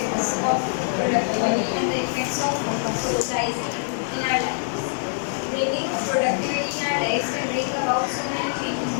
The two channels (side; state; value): right; silent; digital silence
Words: of productivity and the effects of socializing in our lives. Bringing productivity in our lives can bring about so many changes